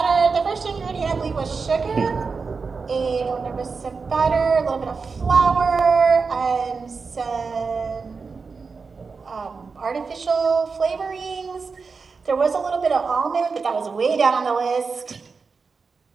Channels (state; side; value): quieter; left; 4.8 dB